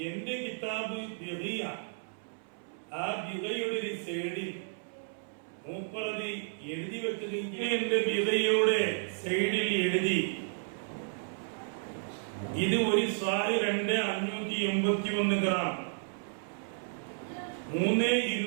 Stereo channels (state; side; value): silent; left; 56 dB below the other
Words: എന്റെ കിതാബ് ബിഗിയ, ആ ബിഗയുടെ ഒരു സൈഡിൽ മൂപ്പറത് എഴുതി വെക്കുകയും എന്റെ ബിഗയുടെ സൈഡിൽ എഴുതി ഇത് ഒരു സ്വാരി 2581 ഗ്രാം